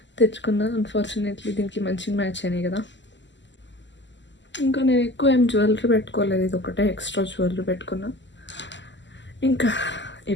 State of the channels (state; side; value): late; right; 0.53 ms